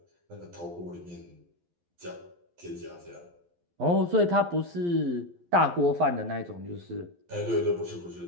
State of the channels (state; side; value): late; left; 11 ms